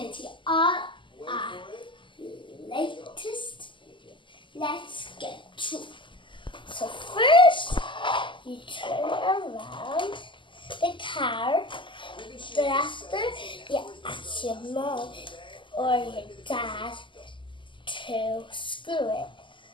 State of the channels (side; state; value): right; late; 0.24 ms